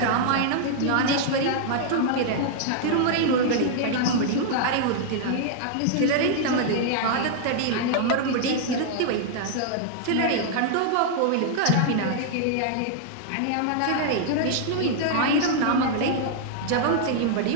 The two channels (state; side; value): different; both; correlation -0.01